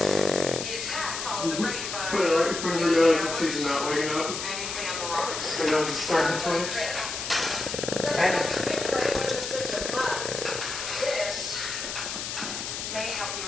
attack followed the rape by Put it right in front of her nose if she's not waking up. anything on the rocks. Her nose is starting to twitch.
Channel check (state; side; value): noise; left; hiss, 5 dB below the sound